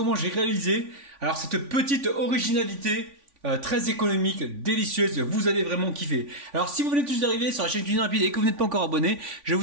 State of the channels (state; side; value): late; left; 3.5 ms